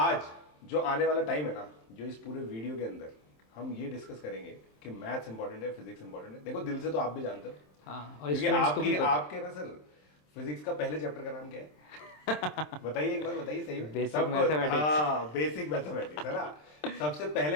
जो आने वाला टाइम है ना, जो इस पूरे वीडियो के अंदर हम ये डिस्कस करेंगे कि मैथ्स इंपॉर्टेंट है, फिजिक्स इंपॉर्टेंट है। देखो दिल से तो आप भी जानते हो, हाँ, और क्योंकि स्टूडेंट्स को भी आपकी पता। आपके ना सर फिजिक्स का पहले चैप्टर का नाम क्या है? बताइए एक बार, बताइए सही में। Basic mathematics. हाँ, बेसिक मैथमेटिक्स है ना। सबसे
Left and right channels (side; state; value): right; late; 27 ms